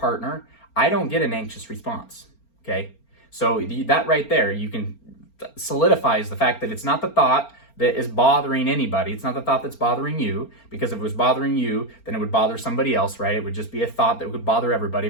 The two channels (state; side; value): late; right; 4.4 ms